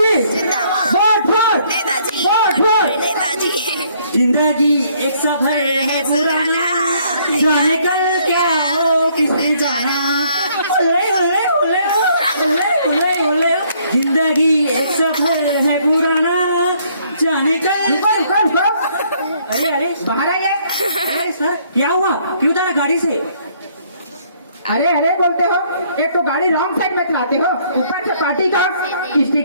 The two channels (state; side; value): inverted; both; correlation -0.65